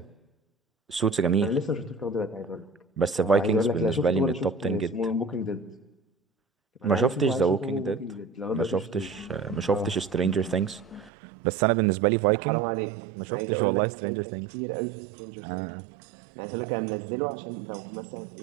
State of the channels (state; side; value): drops out; left; at 11.1 s